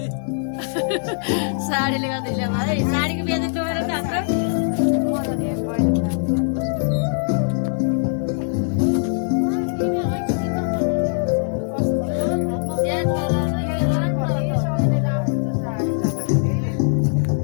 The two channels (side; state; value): right; silent; digital silence